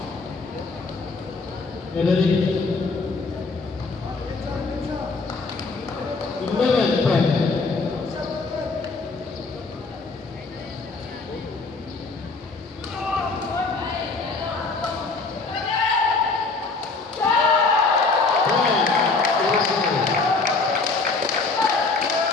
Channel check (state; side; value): quieter; right; 4.0 dB